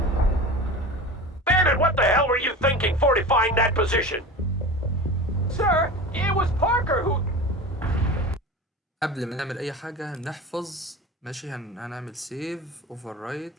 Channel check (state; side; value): normal; both; correlation 0.32